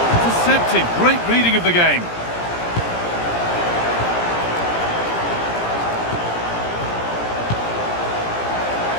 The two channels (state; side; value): late; right; 17 ms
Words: Intercepted. Great reading of the game.